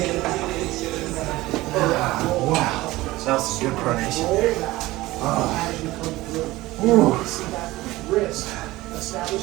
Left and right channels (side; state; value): left; quieter; 18.5 dB